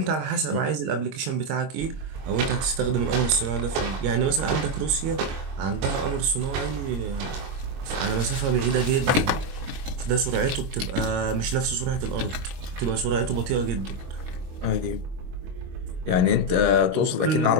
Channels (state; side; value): late; left; 22 ms